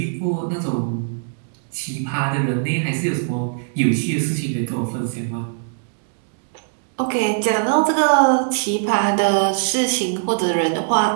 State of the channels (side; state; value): left; silent; digital silence